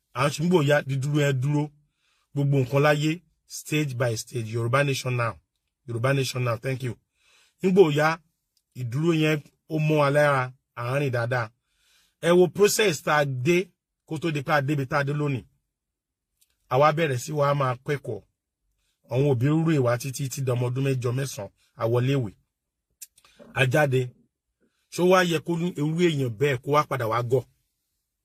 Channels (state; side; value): identical; both; correlation 1.00